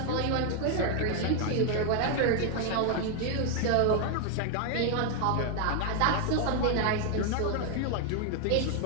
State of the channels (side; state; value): both; different; correlation 0.00